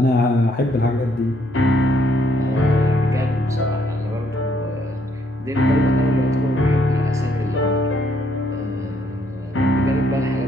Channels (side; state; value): both; normal; correlation 0.70